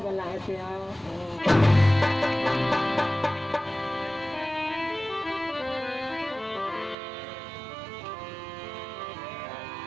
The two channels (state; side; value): drops out; left; at 7.0 s